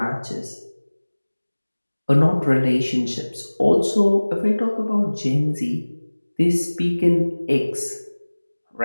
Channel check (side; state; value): both; inverted; correlation -1.00